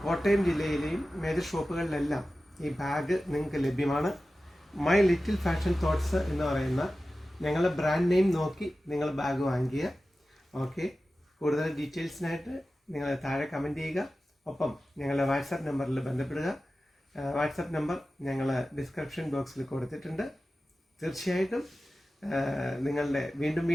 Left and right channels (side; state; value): both; normal; correlation 0.95